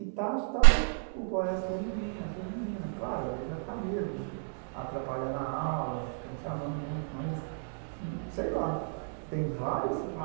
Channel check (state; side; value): silent; left; 57 dB below the other